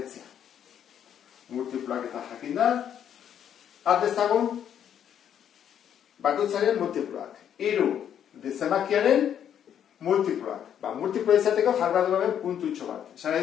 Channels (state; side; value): quieter; right; 9.3 dB